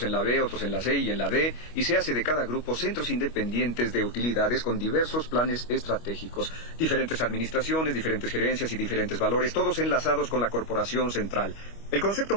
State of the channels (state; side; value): late; right; 25 ms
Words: en la B, otros en la C y en la D, y se hace de cada grupo centros independientes de utilidades con diversos planes estratégicos, diferentes administraciones, diferentes gerencias y diferentes valores, todos enlazados con la corporación central. El concepto